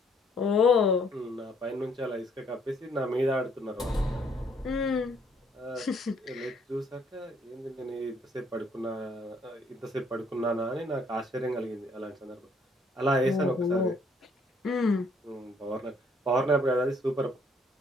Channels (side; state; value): both; normal; correlation 0.65